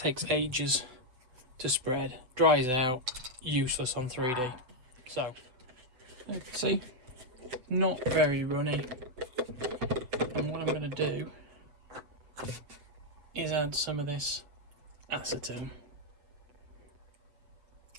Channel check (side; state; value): left; late; 8.0 ms